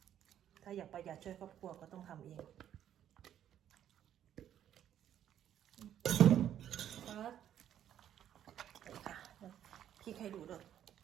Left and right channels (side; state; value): left; quieter; 10.5 dB